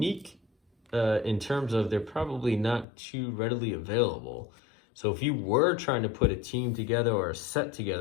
in terms of they're probably not too readily available. So if you were trying to put a team together or a set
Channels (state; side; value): drops out; right; at 2.9 s